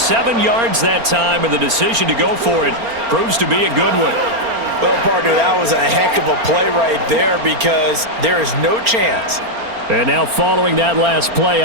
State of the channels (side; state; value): left; late; 4.3 ms